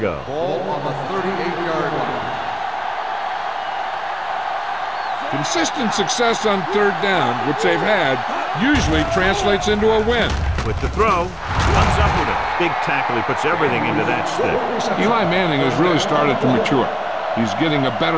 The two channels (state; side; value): identical; both; correlation 1.00